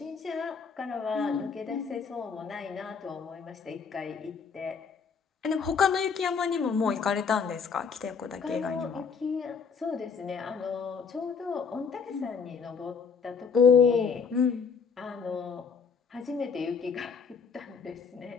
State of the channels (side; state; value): right; quieter; 5.8 dB